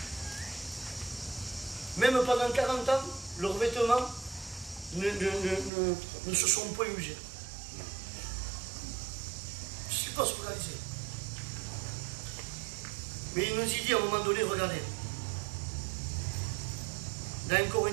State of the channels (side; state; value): left; drops out; at 5.7 s